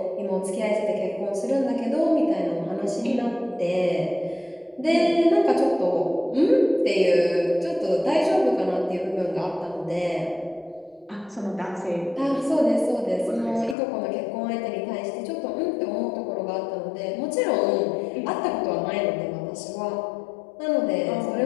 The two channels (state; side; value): drops out; right; at 13.8 s